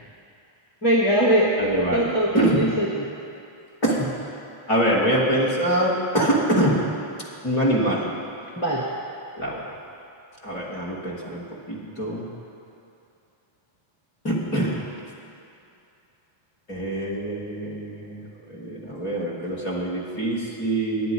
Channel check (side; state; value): right; late; 3.0 ms